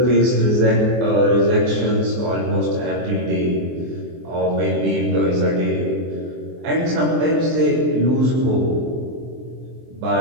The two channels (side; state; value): left; late; 23 ms